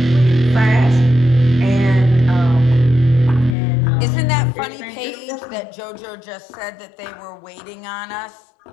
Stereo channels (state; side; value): drops out; right; at 3.6 s